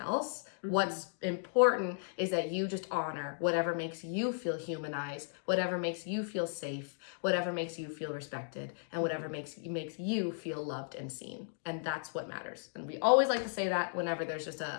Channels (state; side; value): silent; right; digital silence